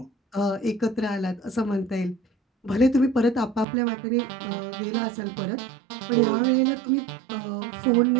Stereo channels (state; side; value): drops out; left; at 3.7 s